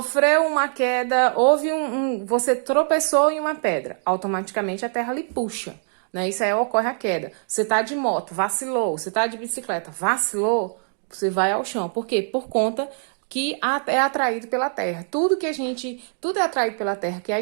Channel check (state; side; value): silent; left; 61 dB below the other